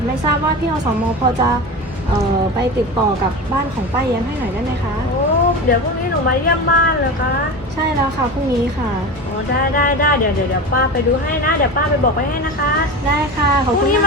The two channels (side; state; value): both; normal; correlation 0.27